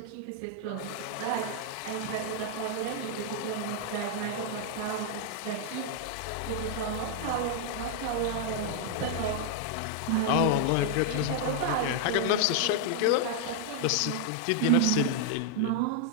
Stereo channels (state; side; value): different; both; correlation -0.01